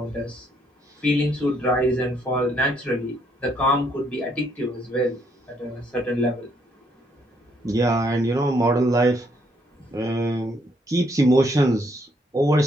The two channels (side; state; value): both; normal; correlation 0.71